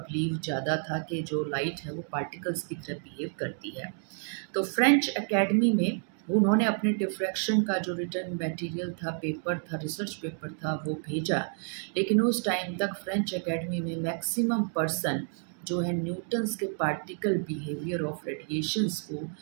ज़्यादा था कि जो लाइट है वो पार्टिकल्स की तरह बिहेव करती है। तो फ्रेंच एकेडमी में उन्होंने अपने डिफ्रैक्शन का जो रिटर्न मटेरियल था, पेपर था, रिसर्च पेपर था, वो भेजा, लेकिन उस टाइम तक फ्रेंच एकेडमी में मैक्सिमम पर्सन जो है न्यूटन्स के पार्टिकल बिहेवियर ऑफ रेडिएशंस को,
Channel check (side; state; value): left; silent; 58 dB below the other